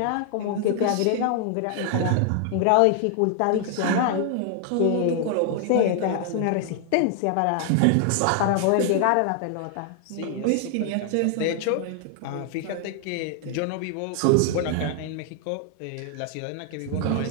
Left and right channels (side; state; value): both; different; correlation 0.00